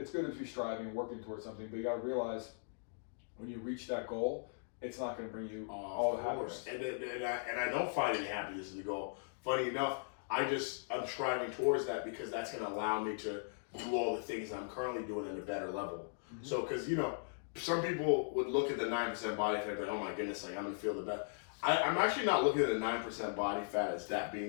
good to be striving and working towards something, but you got to realize when you reach that goal, it's not going to bring you all the happiness. And I don't find any happiness in the goal. Funny enough, I'm striving towards that because that's going to allow me to do all the things I'm currently doing at a better level. Mm-hmm. So, because some people would look at the 9% body fat like, oh my goodness, like I'm gonna feel the best. I'm actually not looking at the 9% body fat as that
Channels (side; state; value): right; silent; digital silence